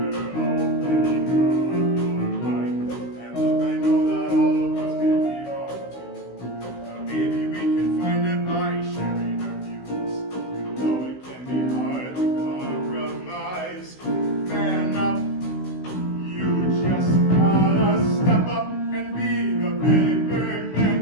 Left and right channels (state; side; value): late; right; 16 ms